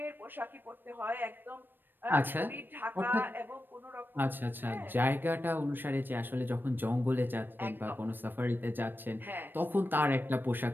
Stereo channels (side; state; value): left; late; 0.094 ms